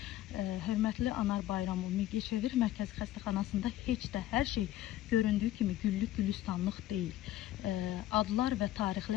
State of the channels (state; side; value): quieter; right; 13.7 dB